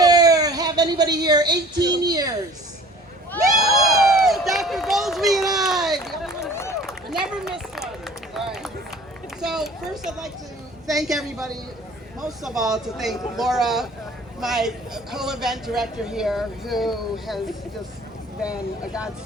anybody here 18 years? Woo! Dr. Goldsby and I never miss one. All right. So first I'd like to thank everybody, most of all to thank Laura, my co-event director here, who has just been a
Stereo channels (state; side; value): normal; both; correlation 0.48